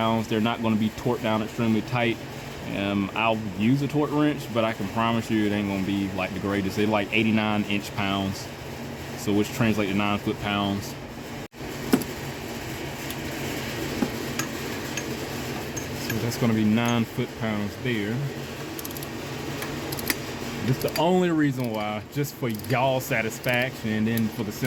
They're not going to be torqued down extremely tight. I'll use a torque wrench, but I can promise you it ain't going to be like the greatest. They're like 89 inch-pounds, so which translates to 9 foot-pounds. So that's going to be 9 foot-pounds there. This is the only reason why, just for y'all satisfaction, and then for the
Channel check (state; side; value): identical; both; correlation 1.00